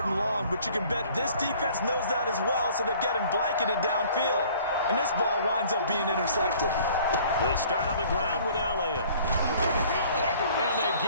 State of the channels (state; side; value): inverted; both; correlation -0.53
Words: and long, but you can bet this defense knows that as well, so they're getting blanketed downfield. And this ball winds up being intercepted. They start on the ground with Elliott. And they